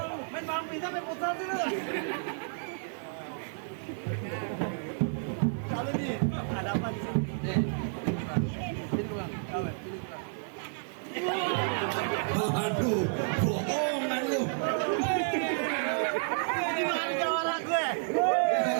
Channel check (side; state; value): left; silent; digital silence